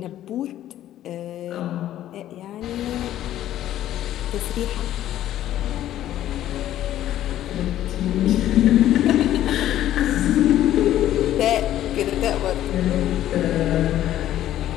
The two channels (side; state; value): right; quieter; 12.6 dB